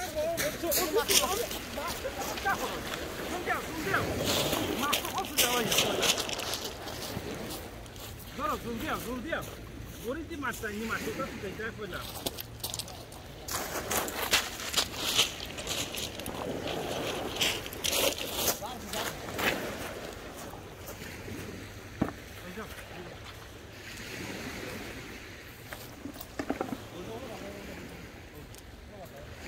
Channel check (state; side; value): identical; both; correlation 1.00